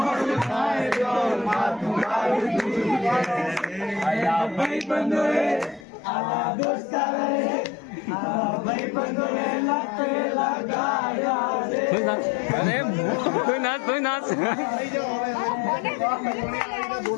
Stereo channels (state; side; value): drops out; right; at 5.9 s